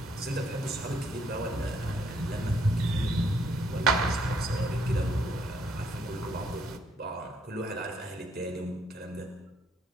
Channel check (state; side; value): normal; both; correlation 0.70